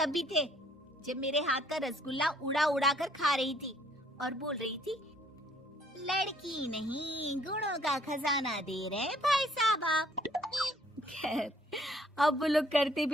भी थे जब मेरे हाथ का रसगुल्ला उड़ा उड़ा कर खा रही थी और बोल रही थी, लड़की नहीं गुणों का खजाना दे रहे भाई साहब आप। खैर, अब वो लोग करते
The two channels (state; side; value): normal; both; correlation 0.62